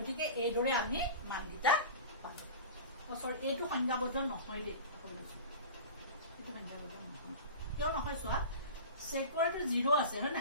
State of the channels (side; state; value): both; inverted; correlation -0.33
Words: এই দৰে আমি মানগিটা পালো সৰি এইটো সংজ্ঞাবদ্ধ নহয় দে এইটো সংজ্ঞাবদ্ধ নহয় কিয় নহয় চোৱা সেকৰটো 0 আছে হয় না